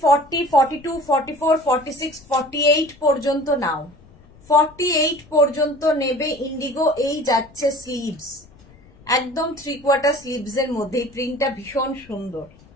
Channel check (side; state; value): left; noise; rumble, 26 dB below the sound